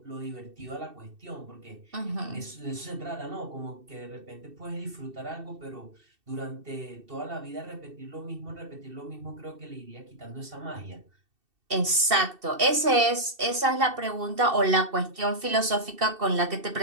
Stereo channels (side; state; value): left; late; 2.7 ms